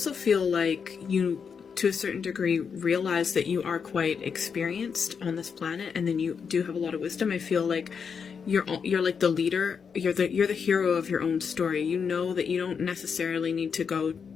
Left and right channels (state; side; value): quieter; right; 6.3 dB